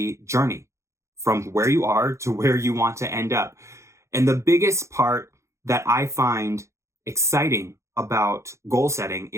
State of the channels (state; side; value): late; left; 0.14 ms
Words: journey from where you are to where you want to end up? And the biggest part that I find exciting about goal setting